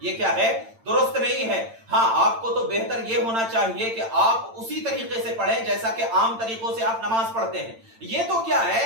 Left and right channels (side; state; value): left; late; 8.9 ms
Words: یہ کیا ہے درست نہیں ہے۔ ہاں آپ کو تو بہتر یہ ہونا چاہیے کہ آپ اسی طریقے سے پڑھیں جیسا کہ عام طریقوں سے آپ نماز پڑھتے ہیں۔ یہ تو کیا ہے